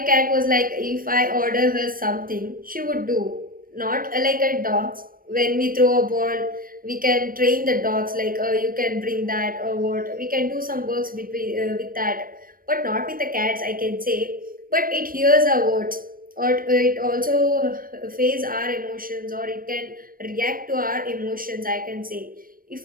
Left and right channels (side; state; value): left; late; 0.41 ms